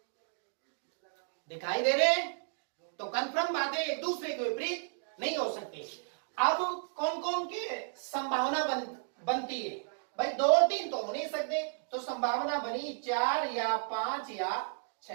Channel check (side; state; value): left; silent; 56 dB below the other